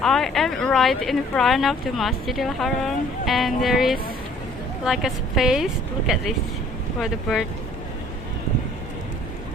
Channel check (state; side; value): normal; both; correlation 0.56